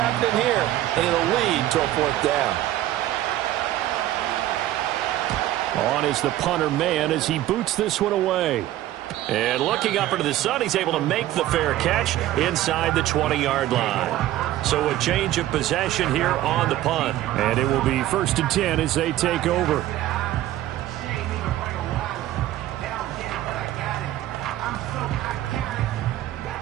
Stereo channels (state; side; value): quieter; left; 14.2 dB